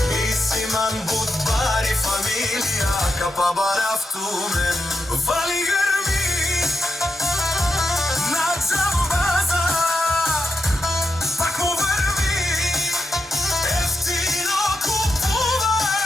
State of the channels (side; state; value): both; normal; correlation 0.86